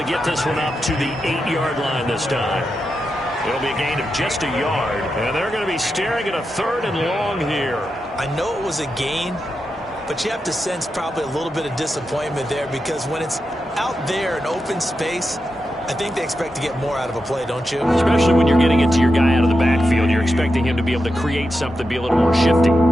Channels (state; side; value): normal; both; correlation 0.88